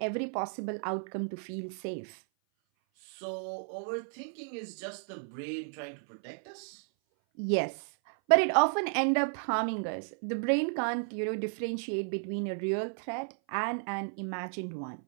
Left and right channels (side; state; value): left; silent; 56 dB below the other